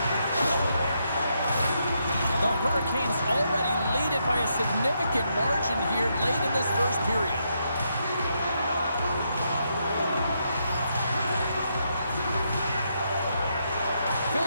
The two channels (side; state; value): both; inverted; correlation -0.79